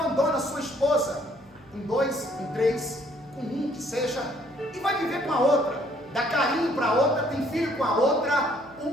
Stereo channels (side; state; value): left; noise; hum, 28 dB below the sound